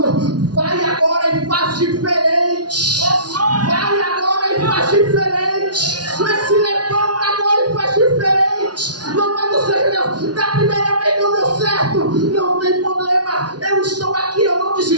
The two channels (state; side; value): late; left; 0.69 ms